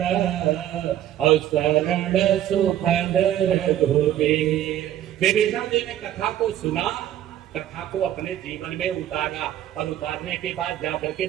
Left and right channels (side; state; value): left; quieter; 11.8 dB